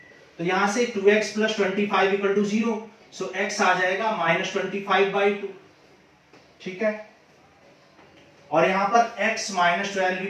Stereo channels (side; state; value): both; identical; correlation 1.00